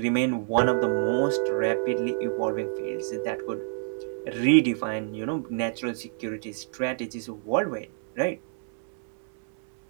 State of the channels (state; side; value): silent; left; digital silence